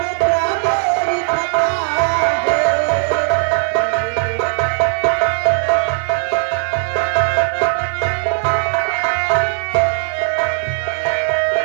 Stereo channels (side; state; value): left; silent; 65 dB below the other